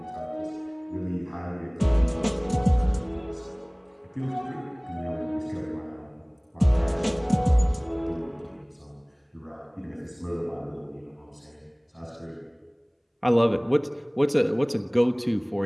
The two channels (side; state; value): both; identical; correlation 1.00